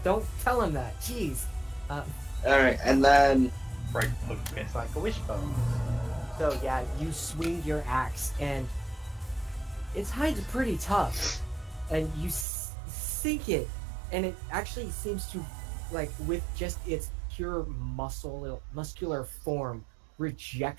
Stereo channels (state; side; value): drops out; left; at 12.5 s